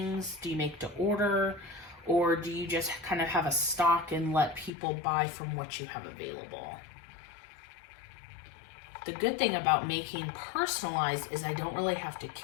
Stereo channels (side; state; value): right; drops out; at 4.7 s